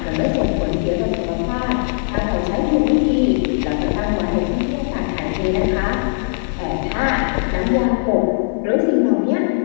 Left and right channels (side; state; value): right; silent; digital silence